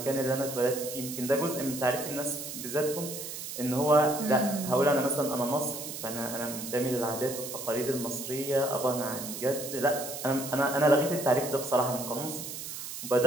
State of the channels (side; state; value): right; noise; hiss, 8 dB below the sound